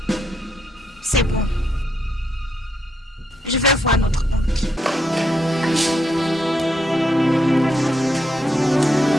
C'est bon. Je vais voir notre oncle.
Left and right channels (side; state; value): both; normal; correlation 0.78